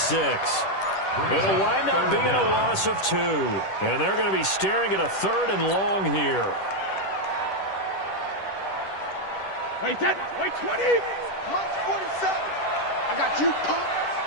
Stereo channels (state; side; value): late; right; 10 ms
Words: It'll wind up being a loss of 2. And they're going to be staring at a 3rd and long here. Wait, 20. Mine's 47. I got you, punk.